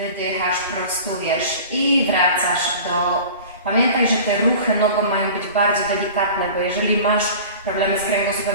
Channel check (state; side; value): inverted; both; correlation -0.39